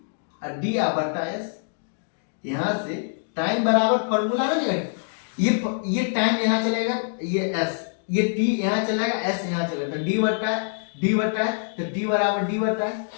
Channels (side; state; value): right; silent; digital silence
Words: बटा s। यहां से टाइम बराबर फॉर्मूला आ जाएगा, ये टाइम यहां चलेगा, ये s, ये t यहां चलेगा, s यहां चलेगा तो d बटा है तो d बराबर d बटा है।